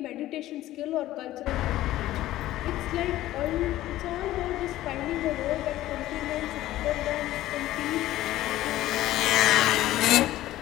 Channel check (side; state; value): right; quieter; 15.0 dB